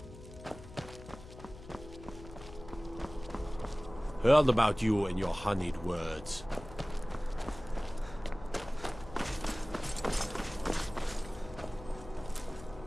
Heard about you and your honeyed words.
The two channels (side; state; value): left; noise; hum, 16 dB below the sound